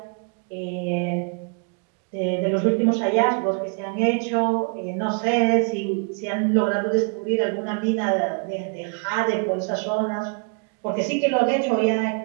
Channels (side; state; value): left; quieter; 37.1 dB